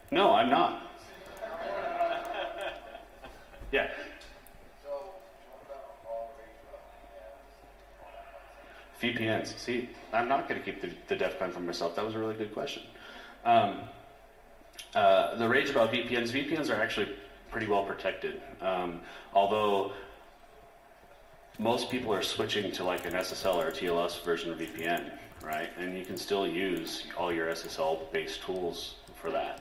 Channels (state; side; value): identical; both; correlation 1.00